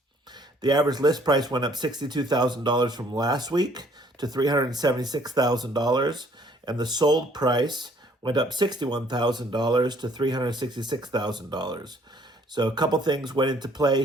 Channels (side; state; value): both; normal; correlation 0.61